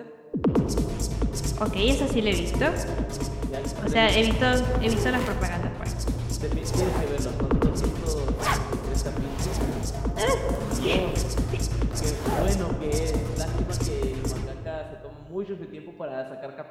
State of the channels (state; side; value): identical; both; correlation 1.00